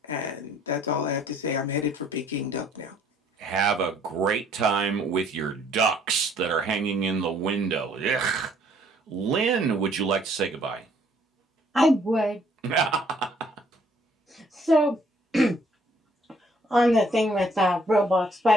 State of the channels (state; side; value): normal; both; correlation 0.62